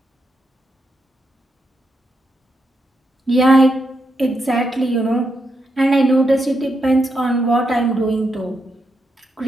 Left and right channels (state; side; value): normal; both; correlation 0.83